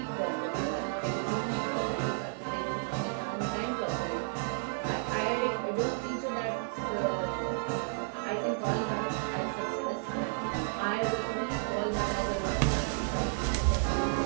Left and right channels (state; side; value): silent; left; 56 dB below the other